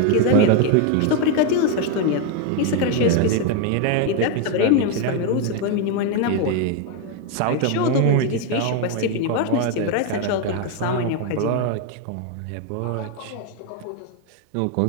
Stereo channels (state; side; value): different; both; correlation 0.01